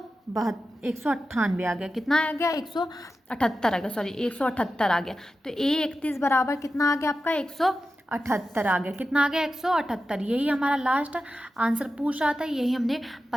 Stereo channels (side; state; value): both; normal; correlation 0.92